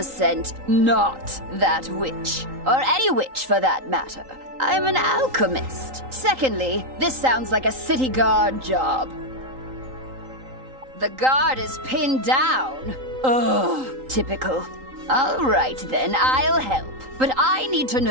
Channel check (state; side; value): late; left; 3.8 ms